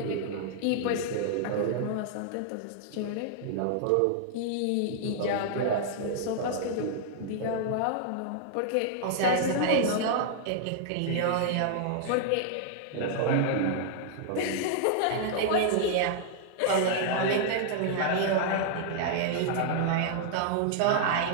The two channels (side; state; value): both; different; correlation -0.01